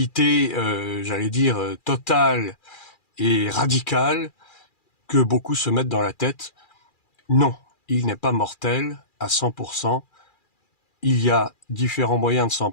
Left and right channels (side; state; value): right; late; 2.4 ms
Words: j'allais dire, totale et radicale que beaucoup se mettent dans la tête. Non, il n'est pas mortel à 100%. Il y a différents moyens de s'en